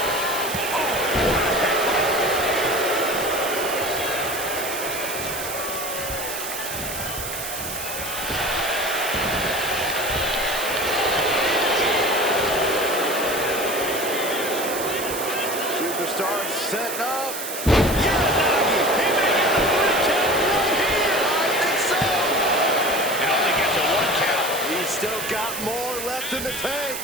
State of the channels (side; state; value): right; noise; hiss, 6 dB below the sound